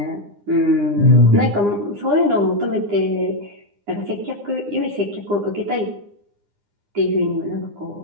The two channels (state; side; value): late; left; 9.8 ms